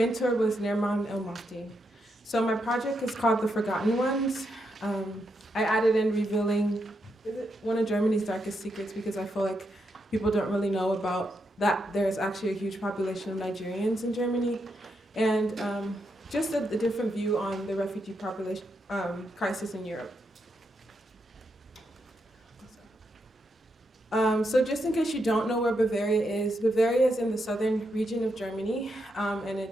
was Nerman El-Mafti. So my project is called The Forgotten Ones. I added in revealing one of Germany's darkest secrets because I feel like people don't really know about that there's actually a huge population of Nigerians in Germany, and just a different view on the refugee population crisis in Europe. So just in case you don't know where Bavaria is in the southern region of Germany, and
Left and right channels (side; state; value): both; normal; correlation 0.82